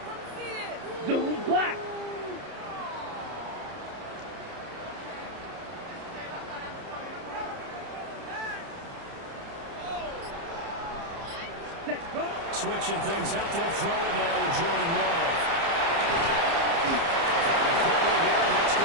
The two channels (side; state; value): left; late; 30 ms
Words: Zoom, Black. Set, go. Switching things up, they'll throw it now with Jordan Love. Quickly here, and that's